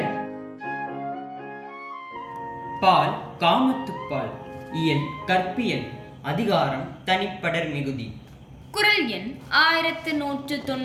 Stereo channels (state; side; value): identical; both; correlation 1.00